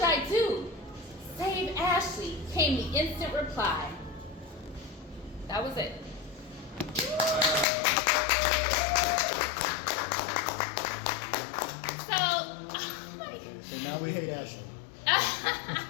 I do? Save Ashley, came the instant reply. That was it. So now we hate Ashley.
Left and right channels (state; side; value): drops out; right; at 7.7 s